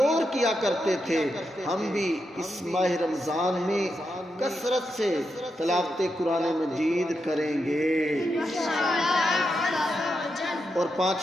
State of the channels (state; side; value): normal; both; correlation 0.85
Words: کیا کرتے تھے۔ ہم بھی اس ماہ رمضان میں کثرت سے تلاوت قرآن مجید کریں گے اور